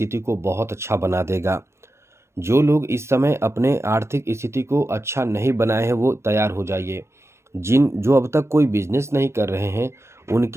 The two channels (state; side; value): late; left; 0.13 ms